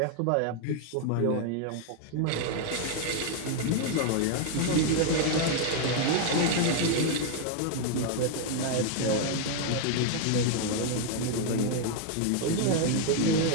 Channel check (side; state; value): both; different; correlation 0.00